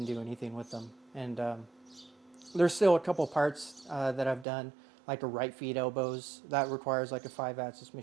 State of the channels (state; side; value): drops out; left; at 4.5 s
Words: do anything with them. And there's still a couple parts that I've done, like a right feed elbows. That requires like a 5-axis